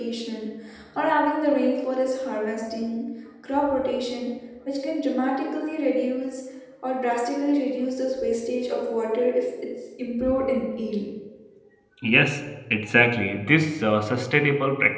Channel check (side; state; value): both; identical; correlation 1.00